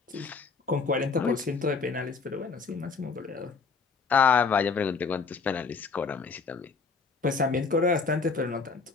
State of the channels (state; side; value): quieter; right; 4.7 dB